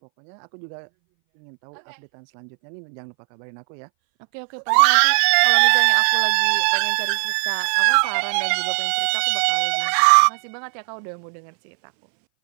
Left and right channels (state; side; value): silent; left; 63 dB below the other